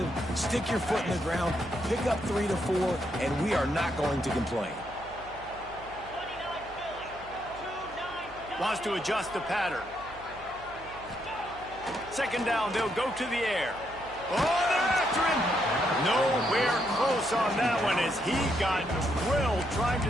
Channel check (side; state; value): right; noise; hum, 19 dB below the sound